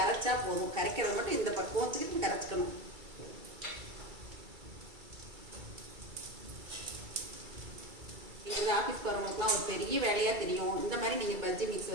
போதும். கரைக்கிறது மட்டும் இந்த பக்குவத்துக்கு கரைச்சிக்கணும். நீங்கள் ஆஃபீஸ் போகிறவங்களுக்குலாம் ஒரு பெரிய வேலையாக தெரியும். இந்த மாதிரி நீங்கள் பஜ்ஜி மிக்ஸ்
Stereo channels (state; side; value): late; left; 2.3 ms